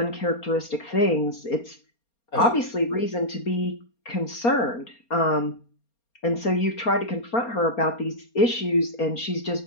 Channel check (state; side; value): late; right; 4.3 ms